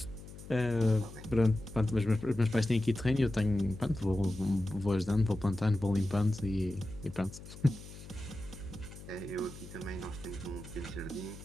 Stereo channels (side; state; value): left; noise; hum, 15 dB below the sound